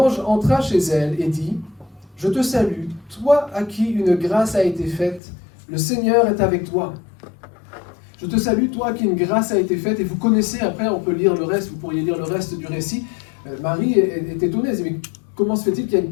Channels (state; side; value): drops out; right; at 5.2 s